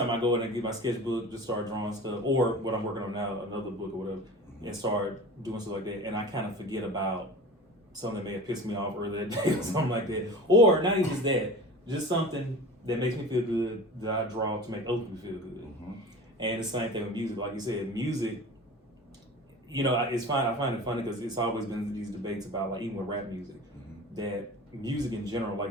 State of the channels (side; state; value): both; normal; correlation 0.36